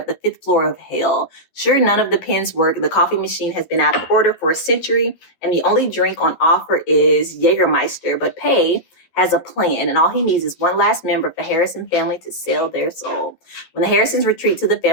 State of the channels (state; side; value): late; right; 12 ms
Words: the 5th floor of hell. Sure, none of the pens work. The coffee machine has been out of order for a century, and the only drink on offer is Jägermeister. But Pei has a plan, and all he needs is one last member of the Harrison family to sell their soul. When the Harrisons retreat to the